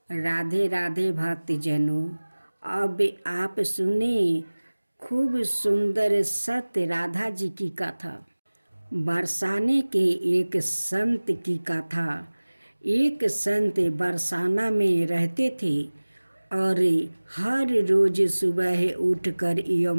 राधे राधे भक्तजनों। अब आप सुने खूब सुंदर सत्य राधा जी की कथा। बरसाने के एक संत की कथा। एक संत बरसाना में रहते थे और हर रोज सुबह उठकर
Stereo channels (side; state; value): both; inverted; correlation -1.00